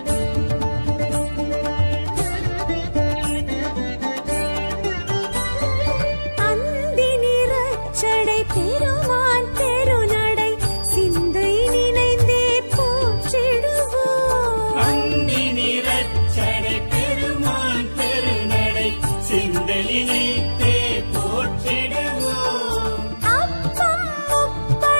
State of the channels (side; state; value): both; inverted; correlation -1.00